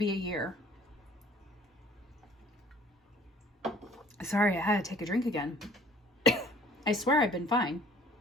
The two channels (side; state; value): both; normal; correlation 0.54